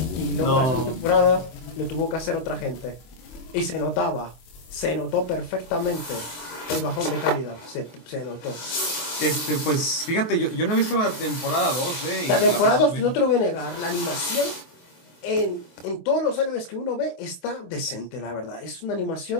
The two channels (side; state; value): right; late; 24 ms